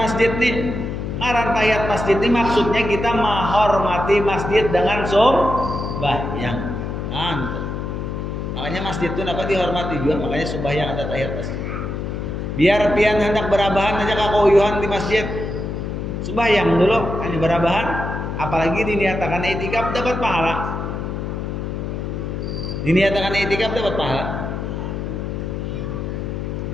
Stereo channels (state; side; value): noise; left; hum, 4 dB below the sound